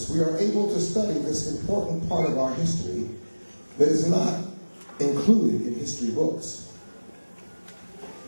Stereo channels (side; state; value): both; inverted; correlation -1.00